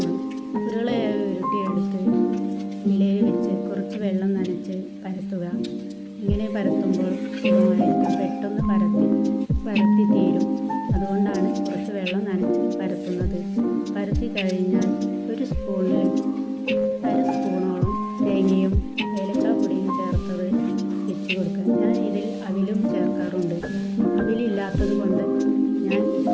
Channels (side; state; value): both; identical; correlation 1.00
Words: ഉരുളയായി ഉരുട്ടിയെടുത്ത് ഇലയിൽ വെച്ച് കുറച്ച് വെള്ളം നനച്ച് പരത്തുക. ഇങ്ങനെ പരത്തുമ്പോൾ പെട്ടെന്ന് പരത്തി തീരും. അതുകൊണ്ടാണ് കുറച്ച് വെള്ളം നനച്ച് പരത്തുന്നത്. പരത്തി കഴിഞ്ഞാൽ ഒരു സ്പൂണിൽ 1/2 സ്പൂണോളം തേങ്ങയും ഏലക്കാപ്പൊടിയും ചേർത്തത് വെച്ച് കൊടുക്കുക. ഞാൻ ഇതിൽ അവിലും ചേർക്കാറുണ്ട്. അവിലില്ലാത്തത് കൊണ്ട് ഞാൻ